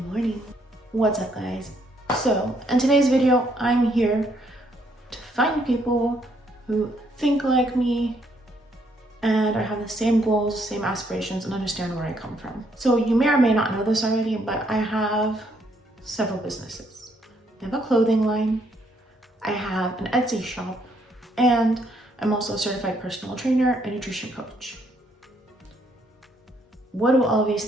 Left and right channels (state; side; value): normal; both; correlation 0.71